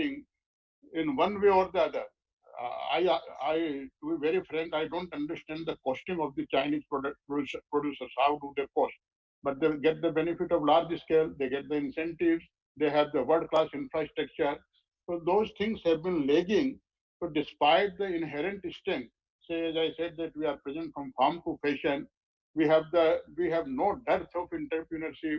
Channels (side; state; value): both; identical; correlation 1.00